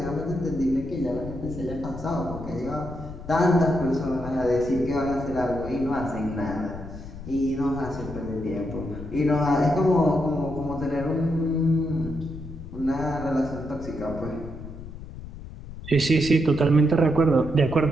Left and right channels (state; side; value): noise; left; rumble, 12 dB below the sound